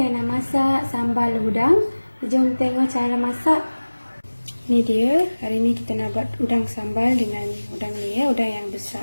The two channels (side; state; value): both; inverted; correlation -1.00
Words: nak masak sambal udang. Jom tengok cara masak. Ni dia. Hari ni kita nak buat udang sambal dengan udang ni ya, udang yang